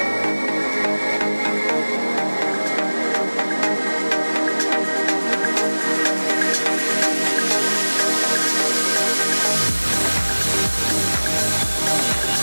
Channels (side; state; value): both; inverted; correlation -1.00